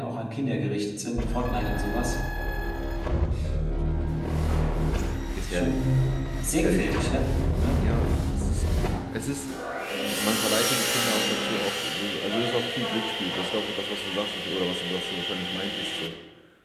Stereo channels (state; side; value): identical; both; correlation 1.00